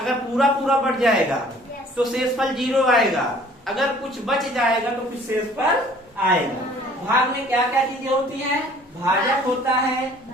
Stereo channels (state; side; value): normal; both; correlation 0.53